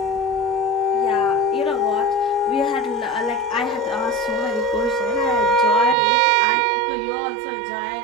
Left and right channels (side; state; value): left; drops out; at 6.0 s